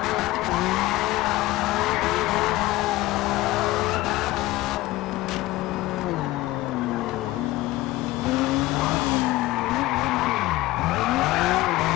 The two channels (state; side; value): quieter; right; 18.2 dB